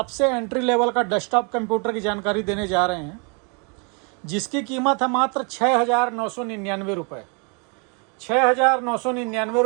एंट्री लेवल का डेस्कटॉप कंप्यूटर की जानकारी देने जा रहे हैं, जिसकी कीमत है मात्र 6,999 रुपये। 6,999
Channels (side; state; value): left; quieter; 35.2 dB